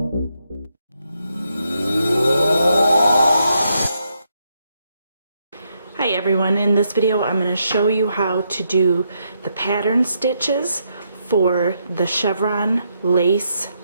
everyone, in this video I'm going to show you how to do the pattern stitches for the Chevron Lace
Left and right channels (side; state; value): both; inverted; correlation -0.79